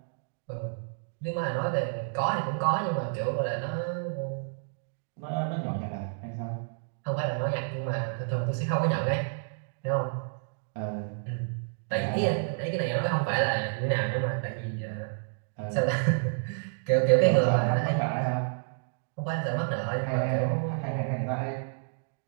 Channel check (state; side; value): silent; left; digital silence